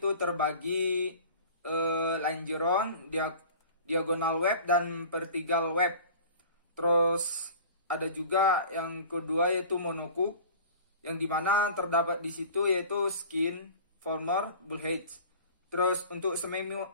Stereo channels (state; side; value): inverted; both; correlation -0.42